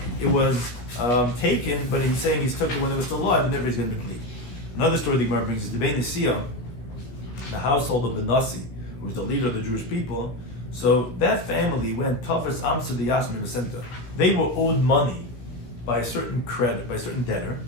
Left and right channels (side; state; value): right; late; 16 ms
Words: it was taken, but he's saying he's took it when it was still alive, and therefore he's going to deplete. Another story the Gemara brings is the Bein Nesiya, the household of the Nasi, who was the leader of the Jewish people. So that family went toughest Amsa the Yasmin Center. They were owed money by a certain credit, by a certain debtor,